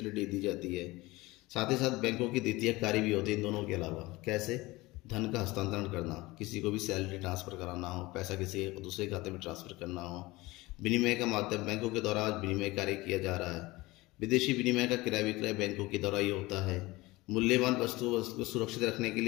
दी जाती है। साथ ही साथ बैंकों की द्वितीय कार्य भी होती है इन दोनों के अलावा। कैसे? धन का हस्तांतरण करना, किसी को भी सैलरी ट्रांसफ़र कराना हो, पैसा किसी दूसरे खाते में ट्रांसफ़र करना हो। विनिमय का माध्यम बैंकों के द्वारा विनिमय कार्य किया जा रहा है। विदेशी विनिमय का क्रय विक्रय बैंकों के द्वारा ही होता है। मूल्यवान वस्तुओं को सुरक्षित रखने के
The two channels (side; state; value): right; quieter; 20.8 dB